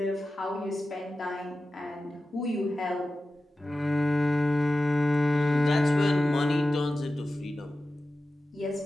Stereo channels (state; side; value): normal; both; correlation 0.94